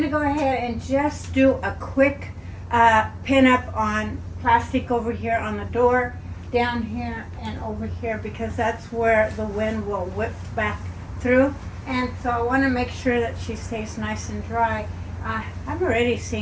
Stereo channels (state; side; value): identical; both; correlation 1.00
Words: to go ahead and just do a quick pin up on plastic over here on the door, down here and over here, because that's where the wind will whip back through. And so I want to make sure that she stays nice and dry. I've already